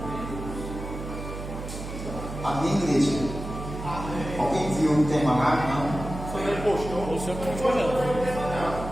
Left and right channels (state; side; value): noise; right; hum, 8 dB below the sound